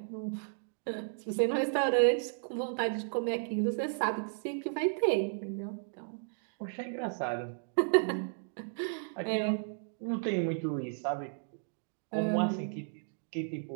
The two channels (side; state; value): left; silent; digital silence